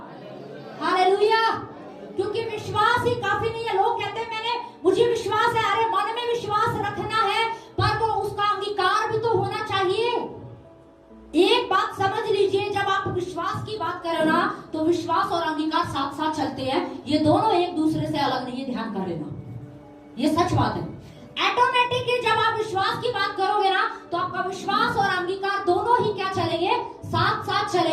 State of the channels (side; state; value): both; identical; correlation 1.00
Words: hallelujah. क्योंकि विश्वास ही काफी नहीं है। लोग कहते हैं मुझे विश्वास है, अरे मन में विश्वास रखना है, पर वो उसका अंगीकार भी तो होना चाहिए। एक बात समझ लीजिए, जब आप विश्वास की बात करो ना, तो विश्वास और अंगीकार साथ साथ चलते हैं। ये दोनों एक दूसरे से अलग नहीं है, ध्यान कर लेना, ये सच बात है। ऑटोमेटिकली जब आप विश्वास की बात करोगे ना, तो आपका विश्वास और अंगीकार दोनों ही क्या चलेंगे? साथ साथ